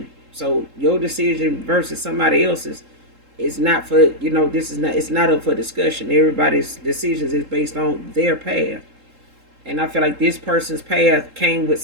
So your decision versus somebody else's is not for, it's not up for discussion. Everybody's decisions is based on their path. And I feel like this person's path came with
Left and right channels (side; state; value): left; late; 3.7 ms